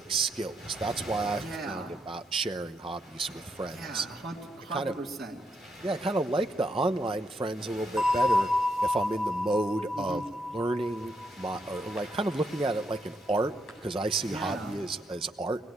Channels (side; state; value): both; normal; correlation 0.78